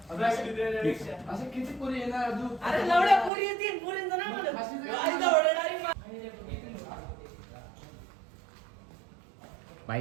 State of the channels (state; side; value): drops out; left; at 3.3 s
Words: असं किती पोरी येणार तू? अरे लवड्या पोरी येतील पोरींचं नाही म्हणत.